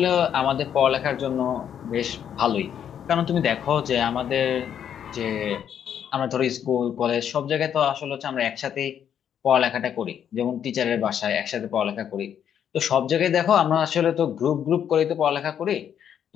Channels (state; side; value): quieter; right; 9.0 dB